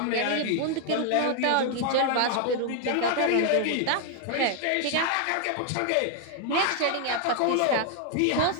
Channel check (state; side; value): different; both; correlation 0.00